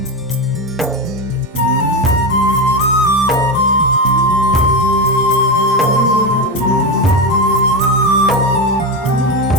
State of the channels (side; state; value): both; normal; correlation 0.14